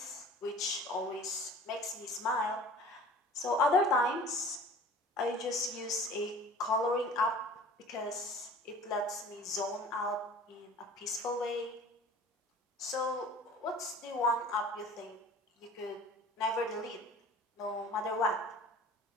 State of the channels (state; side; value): normal; both; correlation 0.44